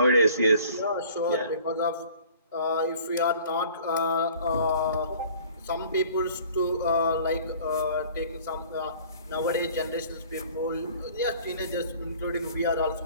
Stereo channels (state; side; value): inverted; both; correlation -0.50